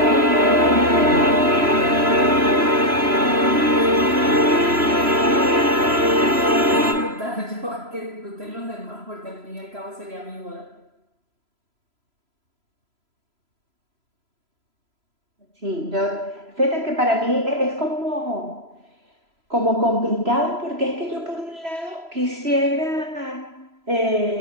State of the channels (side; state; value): left; late; 3.0 ms